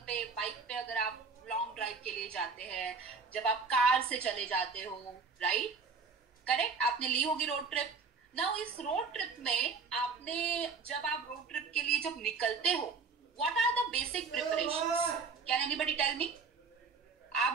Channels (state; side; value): quieter; left; 4.8 dB